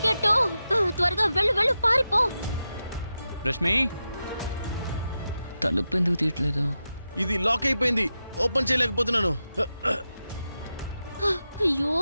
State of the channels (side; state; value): both; inverted; correlation -0.90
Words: త్వరగా వెళ్ళు వెళ్ళు, పారిపో. రష్మి, తలుపు ఎందుకు తీయట్లేదు? ఇది లాక్ అయిపోయింది, ఓపెన్ చేయలేకపోతున్నాను. అయ్యో,